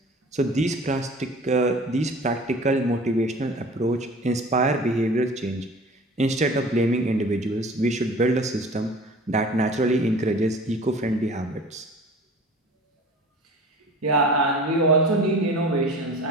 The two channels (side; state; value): both; normal; correlation 0.42